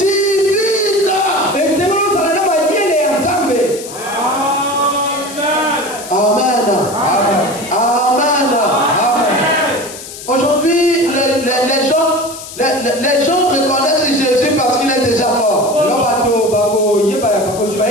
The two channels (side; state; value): left; noise; hiss, 13 dB below the sound